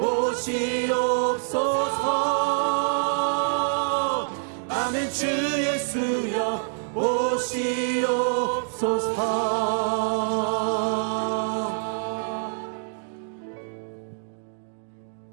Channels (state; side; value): silent; left; digital silence